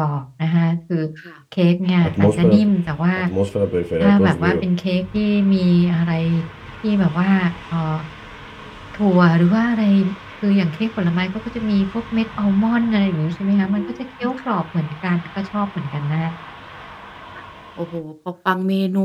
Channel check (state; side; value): identical; both; correlation 1.00